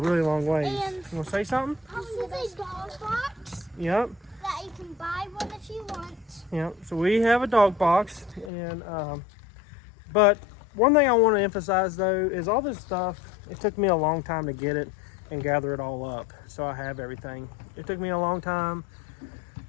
long ways. And you want to say something? This is a dog box. Yep. That you can buy one if you want. Yep. So we have a dog box, and but one thing I want to emphasize though is all this stuff, it took me a long time to get it and gather it all up, so I have everything. It took me a long time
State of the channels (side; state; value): right; drops out; at 8.5 s